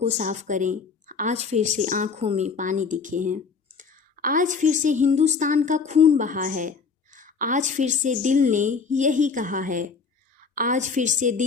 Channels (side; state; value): right; quieter; 5.2 dB